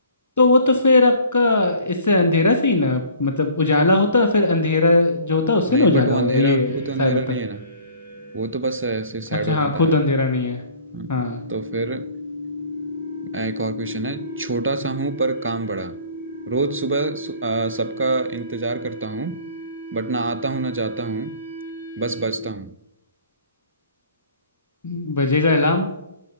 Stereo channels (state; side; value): inverted; both; correlation -0.50